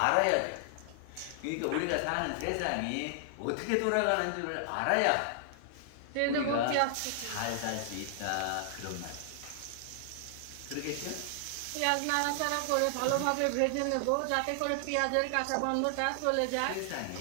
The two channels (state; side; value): different; both; correlation 0.00